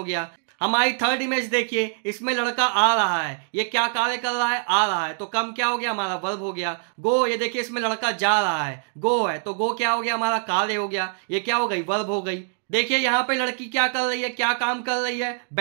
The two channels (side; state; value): left; silent; 59 dB below the other